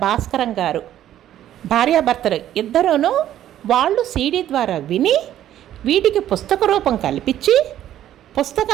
భాస్కరం గారు భార్యాభర్తలు ఇద్దరూను వాళ్ళు సీడీ ద్వారా విని వీటికి పుస్తక రూపం కల్పించి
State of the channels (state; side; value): quieter; left; 11.9 dB